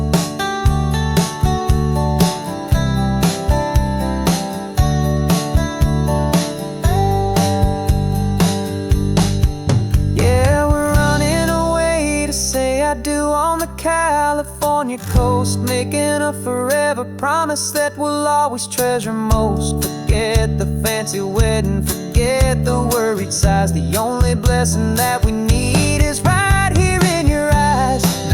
Yeah, we're running away to say I do on the California coast, making a forever promise that we'll always treasure most. Forget the fancy wedding, forget the worried sighs. The only blessing that we need is right here in your eyes.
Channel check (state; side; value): identical; both; correlation 1.00